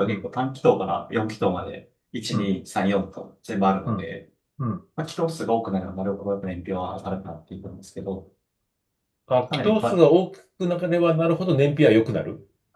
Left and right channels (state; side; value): identical; both; correlation 1.00